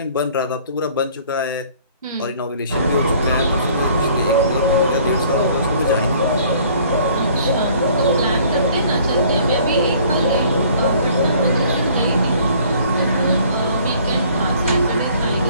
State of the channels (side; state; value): both; inverted; correlation -0.56